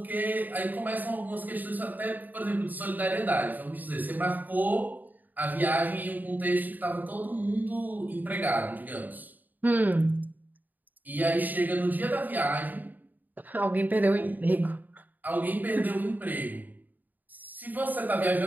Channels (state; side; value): late; left; 0.085 ms